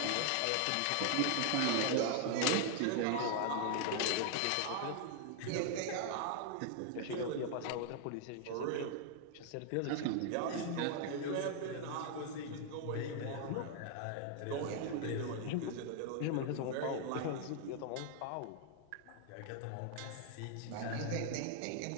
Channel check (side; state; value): both; different; correlation 0.00